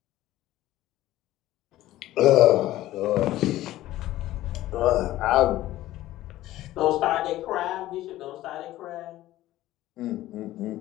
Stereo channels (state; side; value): quieter; right; 15.2 dB